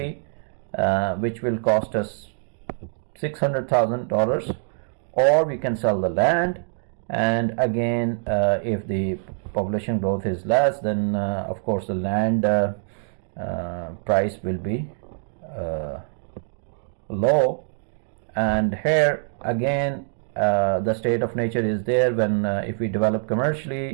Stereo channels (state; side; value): silent; left; digital silence